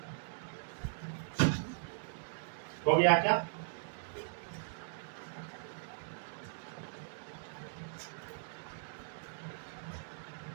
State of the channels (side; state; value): left; silent; digital silence